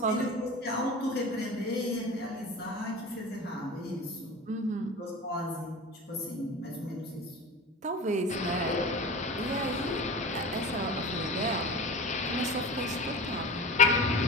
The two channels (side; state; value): both; normal; correlation 0.32